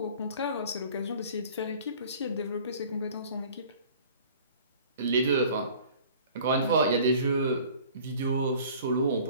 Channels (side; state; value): both; inverted; correlation -0.49